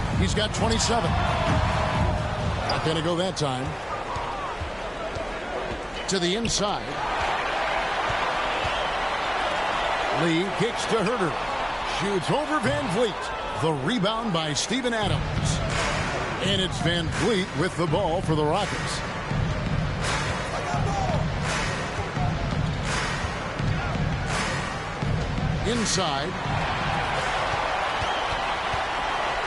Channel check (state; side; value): identical; both; correlation 1.00